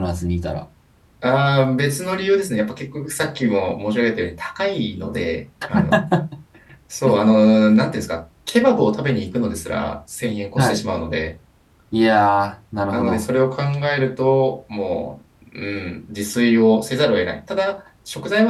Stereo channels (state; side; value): identical; both; correlation 1.00